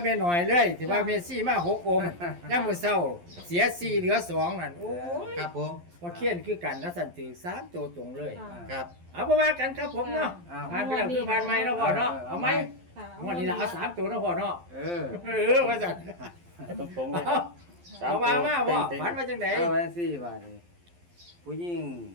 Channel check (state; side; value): late; left; 11 ms